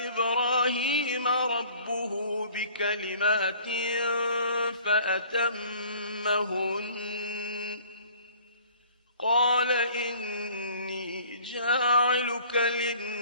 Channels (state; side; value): inverted; both; correlation -0.52